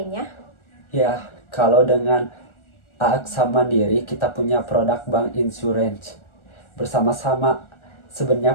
Ya, kalau dengan AXA Mandiri kita punya produk bank insurance bersama-sama.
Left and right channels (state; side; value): late; right; 1.4 ms